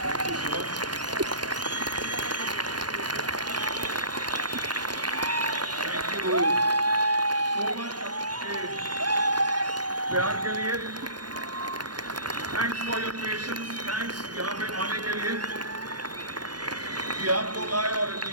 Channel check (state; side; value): late; left; 0.70 ms